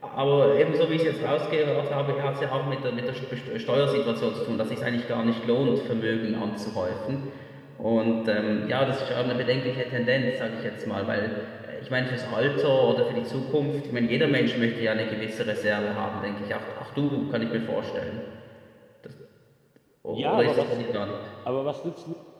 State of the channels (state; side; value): identical; both; correlation 1.00